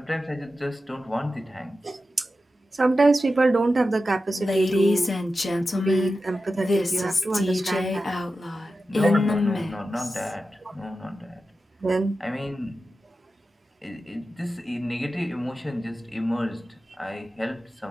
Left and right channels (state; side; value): normal; both; correlation 0.92